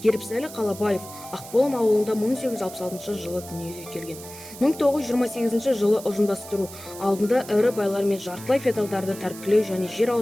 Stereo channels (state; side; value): noise; right; hiss, 15 dB below the sound